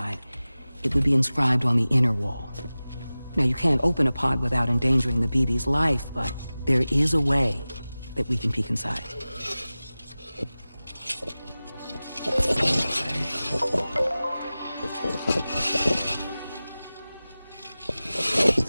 It would be inscribed on the inner wall. Now, you can't open a pod without endangering the BB's life, but there is a way that we can peek inside.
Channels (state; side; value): inverted; both; correlation -0.97